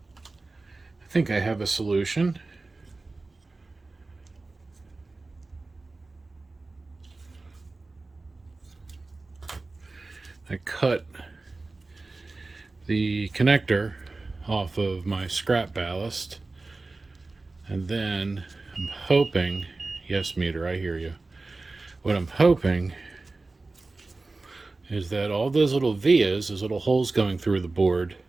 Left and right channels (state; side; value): quieter; left; 3.4 dB